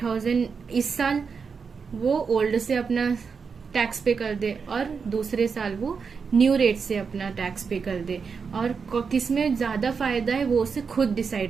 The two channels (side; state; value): left; quieter; 5.6 dB